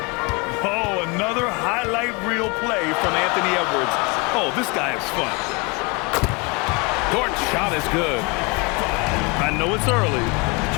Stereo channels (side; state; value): right; quieter; 29.1 dB